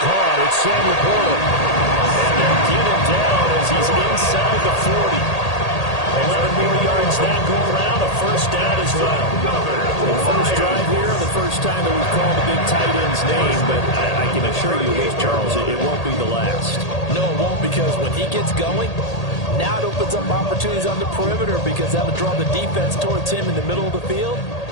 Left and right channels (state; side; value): late; right; 1.8 ms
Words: caught. It's Sam Laporta. And they'll get him down as he's inside the 40. 11 more yards that go around, a first down as well. The first drive here, the first time that we've called the big tight end's name, but I can assure you this, Charles, it won't be the last. No, it won't, because when he gets going, now it opens up opportunities on the perimeter because that'll draw the defense towards him in the middle of the field.